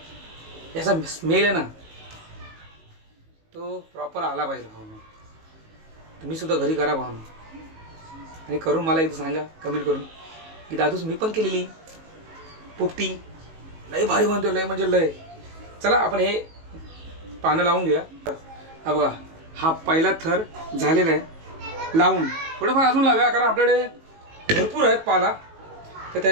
याचा स्मेल आहे ना तो प्रॉपर आला पाहिजे. भावना तुम्ही सुद्धा घरी करा भावना, आणि करून मला एकदा सांगा कमेंट करून की दादूस मी पण केलेली पोपटी लय भारी बनतो, लय म्हणजे लय. चला आपण हे पानं लावून घेऊया. हा बघा हा पहिला थर झालेला आहे लावून. थोडंफार अजून लावूया कारण आपल्याकडे भरपूर आहेत पाला, तर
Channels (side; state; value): left; late; 19 ms